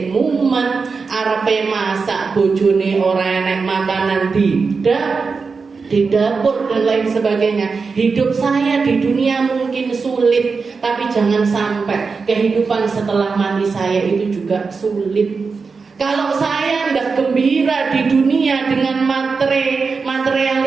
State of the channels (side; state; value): left; quieter; 4.8 dB